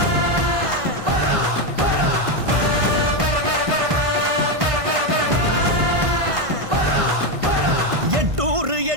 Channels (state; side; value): late; left; 1.5 ms